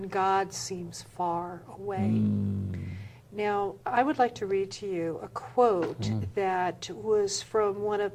God seems far away. Now, I would like to read to you a quote that was from one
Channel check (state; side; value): identical; both; correlation 1.00